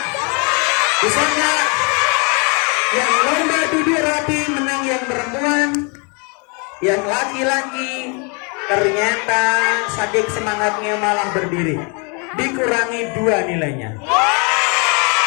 Bisa enggak? Yang lomba duduk rapi menang yang perempuan. Yang laki-laki ternyata saking semangatnya malah berdiri. Dikurangi 2 nilainya.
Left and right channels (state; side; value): quieter; right; 34.4 dB